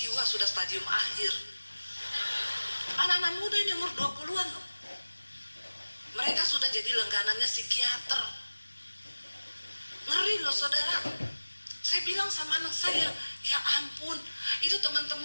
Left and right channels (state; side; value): inverted; both; correlation -1.00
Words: sudah stadium akhir. Anak-anak muda ini umur 20-an loh. Mereka sudah jadi langganannya psikiater. Ngeri loh saudara. Saya bilang sama anak saya, ya ampun, itu